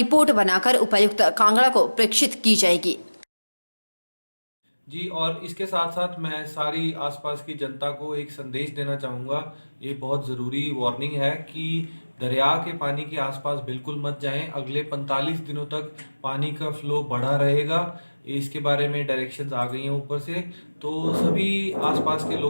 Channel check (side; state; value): both; inverted; correlation -1.00